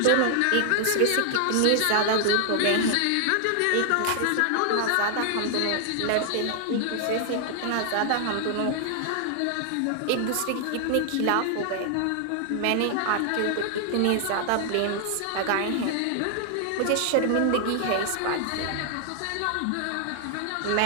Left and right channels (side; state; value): both; different; correlation 0.00